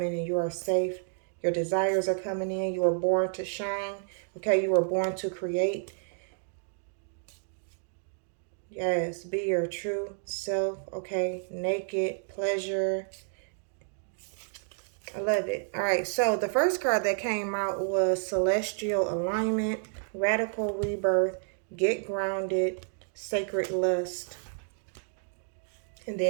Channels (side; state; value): left; silent; digital silence